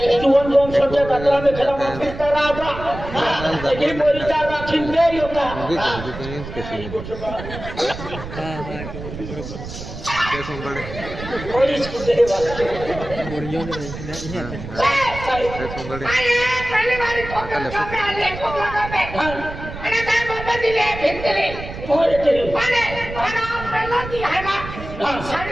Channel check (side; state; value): right; noise; rumble, 10 dB below the sound